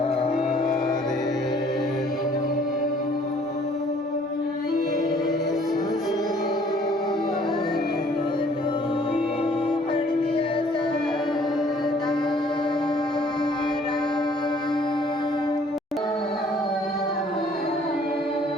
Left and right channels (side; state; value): both; normal; correlation 0.58